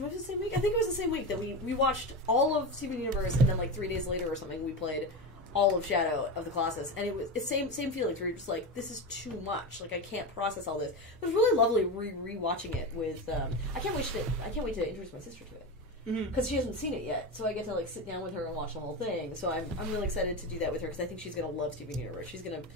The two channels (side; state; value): both; normal; correlation 0.20